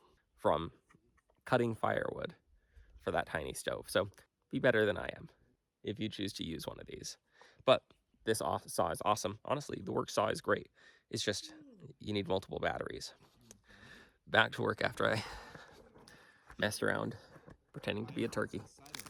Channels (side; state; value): both; identical; correlation 1.00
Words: from cutting firewood for that tiny stove. So be better than I am if you choose to use one of these. But this saw is awesome. Honestly, the Works saw is great. It's just, you need multiple batteries. Back to work after I messed around pretending to be a turkey.